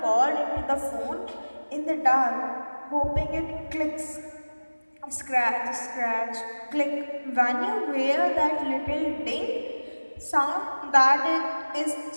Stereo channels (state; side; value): inverted; both; correlation -1.00